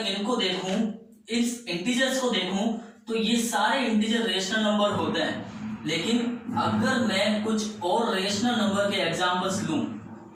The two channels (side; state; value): both; identical; correlation 1.00